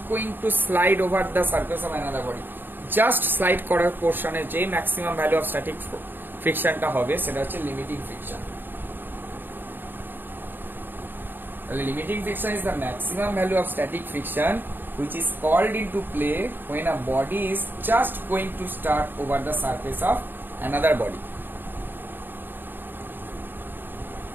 going to slide over the surface of another body। Just slide করার পোর্শনে যে maximum value of static ফ্রিকশনটা হবে সেটা হচ্ছে limiting friction. Limiting friction is the maximum value of static friction which is called into play when a body is just going to start over the surface of another body।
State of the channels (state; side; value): late; left; 0.094 ms